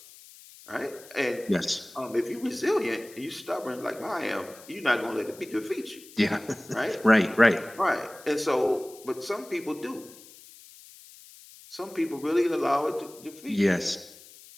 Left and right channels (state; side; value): noise; left; hiss, 20 dB below the sound